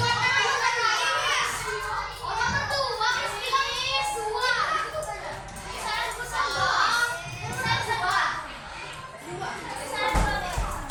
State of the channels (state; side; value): identical; both; correlation 1.00